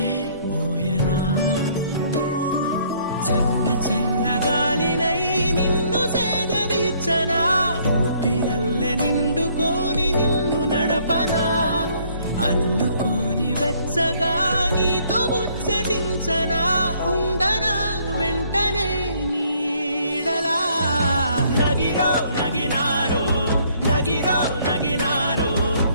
మోయనా. చల్ల చల్లగాలినై నిన్ను సేదదీర్చనా. ఊపిరల్లె నిండుకోని నిన్ను నడపనా. అల్లుకోని వెచ్చగా నీతో ముచ్చటించనా. ఉండనా వెంటనే నీడలా. నగిరో నగినారో నగిరో నగినారో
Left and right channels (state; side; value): inverted; both; correlation -0.64